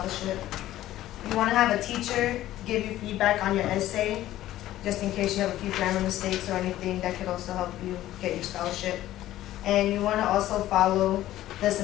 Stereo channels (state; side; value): quieter; right; 14.2 dB